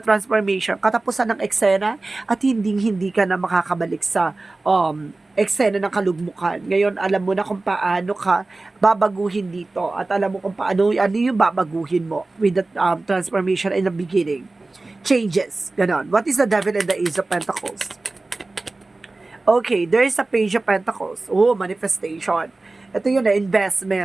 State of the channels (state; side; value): quieter; left; 3.2 dB